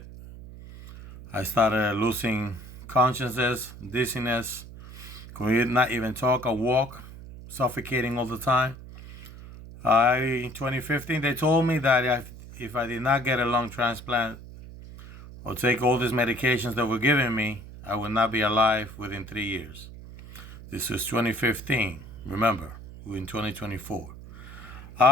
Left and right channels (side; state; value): right; noise; hum, 15 dB below the sound